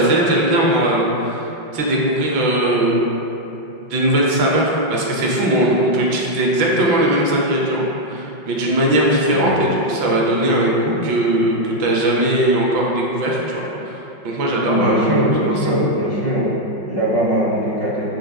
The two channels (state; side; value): late; left; 5.4 ms